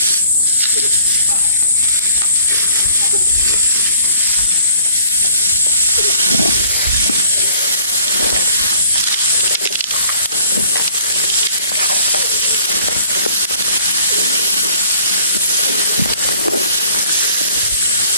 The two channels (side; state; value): both; inverted; correlation -0.55